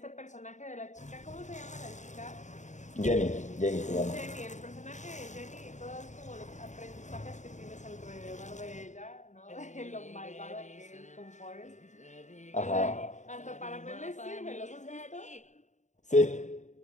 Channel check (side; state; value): right; late; 0.35 ms